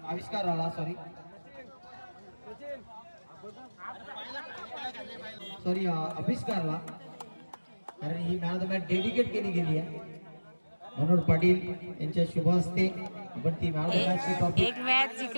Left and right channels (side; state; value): both; inverted; correlation -1.00